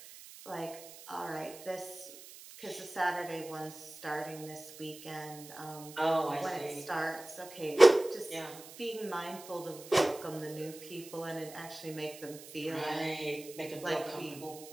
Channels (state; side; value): noise; right; hiss, 16 dB below the sound